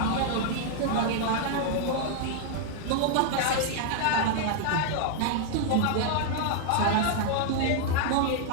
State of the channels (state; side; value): different; both; correlation 0.00